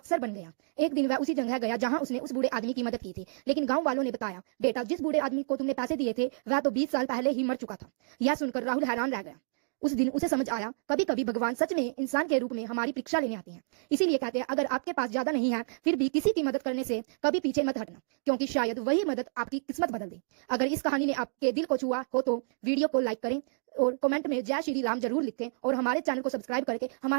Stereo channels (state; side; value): silent; left; digital silence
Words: बन गया। एक दिन वह उसी जगह गया जहां उसने उस बूढ़े आदमी की मदद की थी, लेकिन गांव वालों ने बताया, बेटा जिस बूढ़े आदमी को तुमने पैसे दिए थे वह तो 20 साल पहले ही मर चुका था। यह सुनकर राहुल हैरान रह गया। उस दिन उसे समझ आया, कभी कभी भगवान सच में इंसान के रूप में हमारी परीक्षा लेने आते हैं। इसीलिए कहते हैं, अगर आपके पास ज्यादा नहीं है फिर भी किसी की मदद करने से कभी पीछे मत हटना, क्योंकि शायद वही मदद आपकी किस्मत बदल दे। अगर इस कहानी ने आपके दिल को छुआ हो तो वीडियो को लाइक करें और कमेंट में जय श्री राम जरूर लिखें और हमारे चैनल को सब्सक्राइब करके